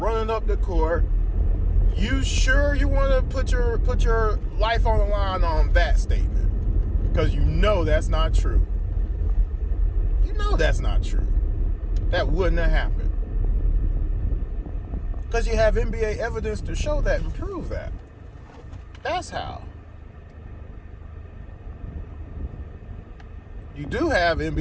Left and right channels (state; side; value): identical; both; correlation 1.00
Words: up the court. You sure you want to put your life on the line on that statement? Because you know that's not true. You know that's not true. That wouldn't have happened. Because you have NBA evidence to show that and prove that. That's how. You do have